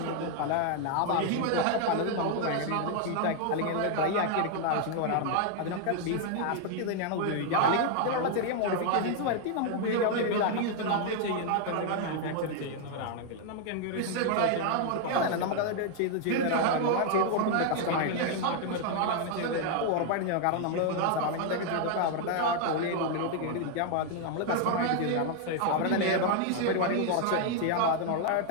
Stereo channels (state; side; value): different; both; correlation 0.00